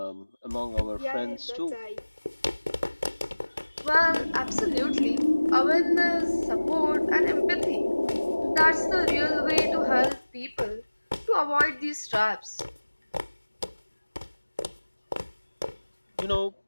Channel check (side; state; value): both; inverted; correlation -1.00